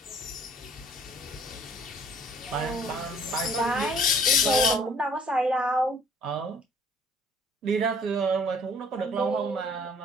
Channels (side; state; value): both; normal; correlation 0.56